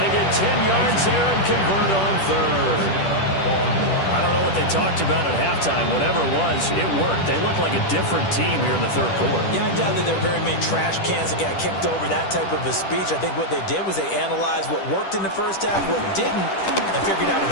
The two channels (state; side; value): late; right; 10 ms